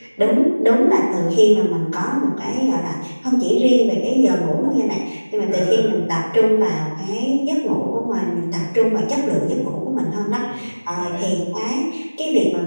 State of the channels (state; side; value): inverted; both; correlation -1.00